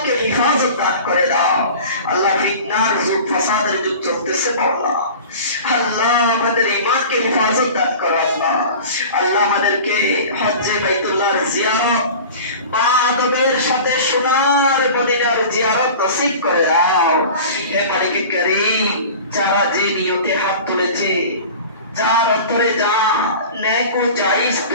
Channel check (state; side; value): inverted; both; correlation -0.38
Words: হিফাজত দান করে দাও। আল্লাহ ফিতনার যুগ, ফাসাদের যুগ চলতেছে আল্লাহ, আল্লাহ আমাদের ঈমানকে হিফাজত দান করো আল্লাহ। আল্লাহ আমাদেরকে হজ্জে বাইতুল্লাহর জিয়ারত বা আদবের সাথে সোনার মদিনার জিয়ারত নসিব করে দাও। হে মালিক করিম, যারা যে নিয়তে হাত তুলেছে, যার অন্তরে যা নেক ও জায়েজ